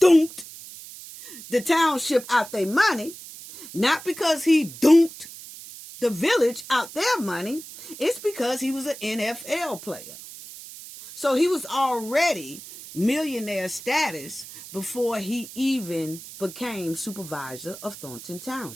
the township out their money, not because he dunked the village out their money, it's because he was an NFL player. So he was already millionaire status before he even became supervisor of Thornton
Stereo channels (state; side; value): noise; right; hiss, 15 dB below the sound